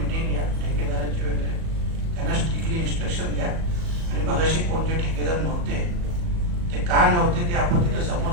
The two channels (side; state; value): left; late; 37 ms